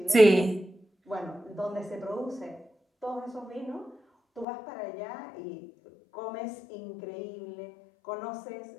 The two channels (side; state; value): right; drops out; at 4.5 s